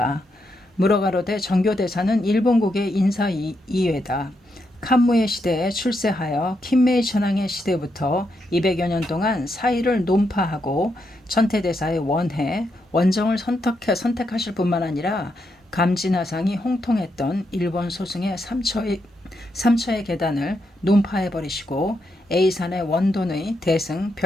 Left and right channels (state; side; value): normal; both; correlation 0.81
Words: 무러가로되 정교대사는 일본국의 인사 이외다. 칸무의 시대에 출세하여 킨메이 천황의 시대부터 200여 년 동안 사의를 논파하고 천태대사의 원정을 선택하실 뿐만 아니라 감진하상이 홍통했던 일본 소승의 삼처의 계단을 논파해버리시고 A산의 원돈의 대승